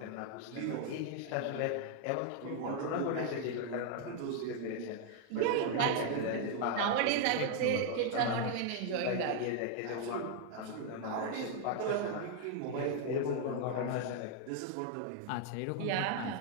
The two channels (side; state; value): both; different; correlation 0.00